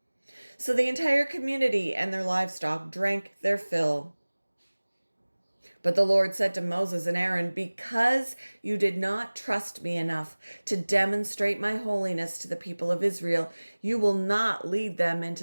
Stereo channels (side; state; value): both; inverted; correlation -1.00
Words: So the entire community and their livestock drank their fill. But the Lord said to Moses and Aaron, "Because you did not trust me enough to demonstrate my holiness to the people of Israel, you will not lead them